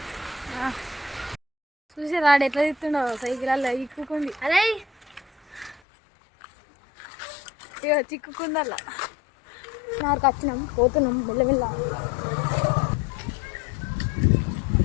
చూసి రాడు ఎట్లా తిస్తుండవు సైకిల్ అలా ఇక్కుకుంది. అరే ఇక చిక్కుకుందల్లా నాకు వచ్చినాం, పోతున్నాం మెల్లమెల్ల.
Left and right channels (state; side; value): drops out; right; at 5.8 s